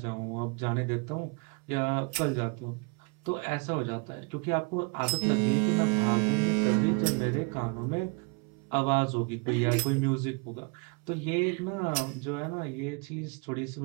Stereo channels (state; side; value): quieter; left; 32.7 dB